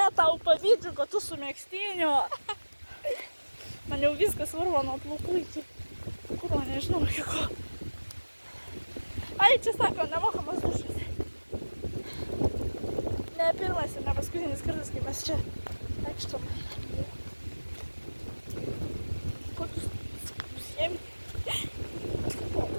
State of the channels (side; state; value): both; inverted; correlation -1.00